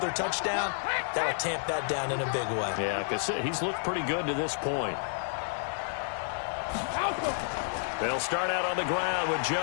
touchdown, that'll tamp that down in a big way. Yeah, because he's looked pretty good to this point. They'll start out on the ground with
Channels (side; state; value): right; silent; 58 dB below the other